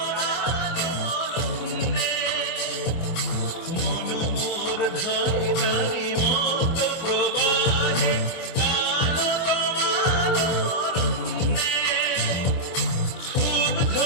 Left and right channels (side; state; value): right; late; 25 ms